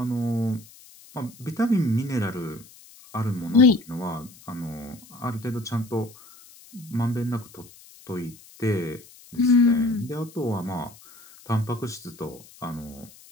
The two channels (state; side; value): noise; left; hiss, 22 dB below the sound